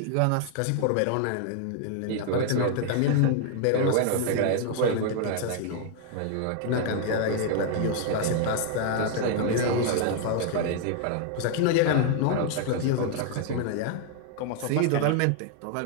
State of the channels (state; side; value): different; both; correlation 0.00